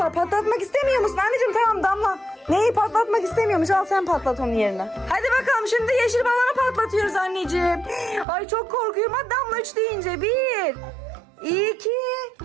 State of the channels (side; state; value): left; drops out; at 8.2 s